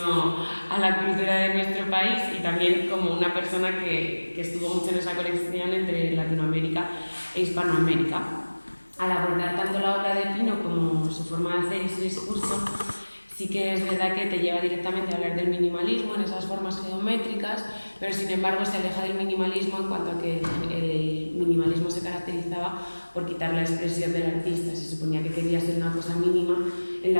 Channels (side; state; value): both; inverted; correlation -1.00